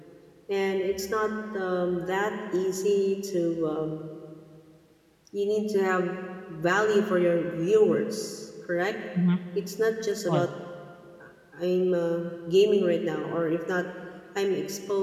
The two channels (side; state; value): both; identical; correlation 1.00